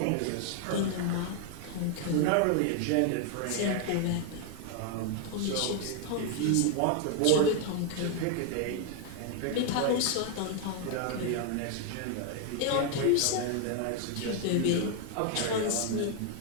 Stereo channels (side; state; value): both; different; correlation 0.00